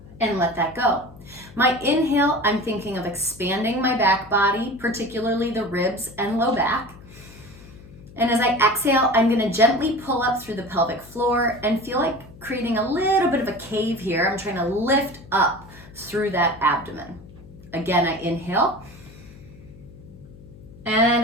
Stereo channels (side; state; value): left; noise; hum, 20 dB below the sound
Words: and let that go. My inhale, I'm thinking of expanding my back body, particularly the ribs and low back. And as I exhale, I'm gonna gently pull up through the pelvic floor and feel like creating a little bit of a cave here. I'm trying to lift up through that abdomen. Again, I inhale.